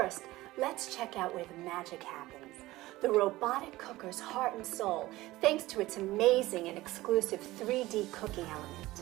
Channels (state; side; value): quieter; left; 18.0 dB